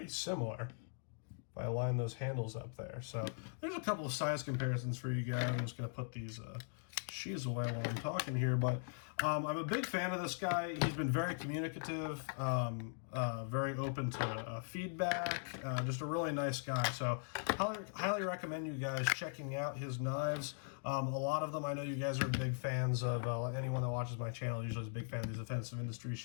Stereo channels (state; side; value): silent; right; digital silence